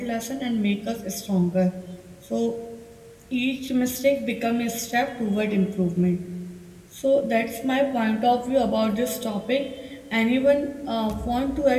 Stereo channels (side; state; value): both; identical; correlation 1.00